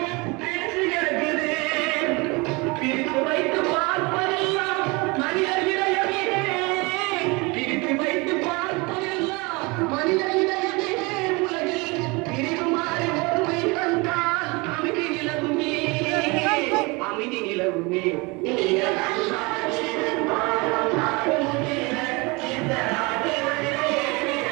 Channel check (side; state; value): left; quieter; 26.4 dB